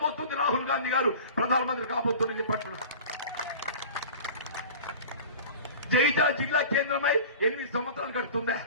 రాహుల్ గాంధీ గారు ప్రధానమంత్రి కాబోతుందని చెప్పంటున్నారు. జగిత్యాల జిల్లా కేంద్రమై 8 సంవత్సరాలు గడుతుందా?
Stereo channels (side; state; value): both; inverted; correlation -0.39